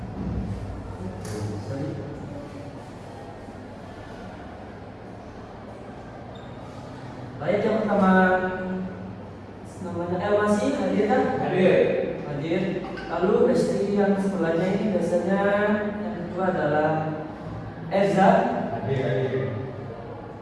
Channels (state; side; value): identical; both; correlation 1.00